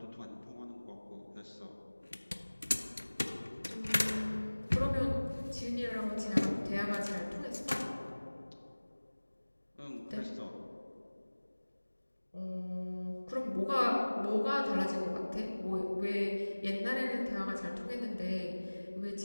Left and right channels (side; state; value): both; inverted; correlation -1.00